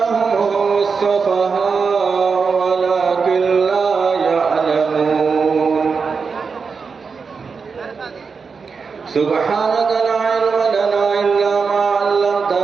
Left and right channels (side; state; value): left; quieter; 5.2 dB